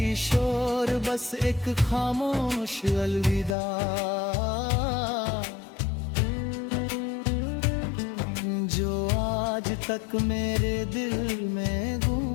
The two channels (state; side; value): drops out; right; at 3.6 s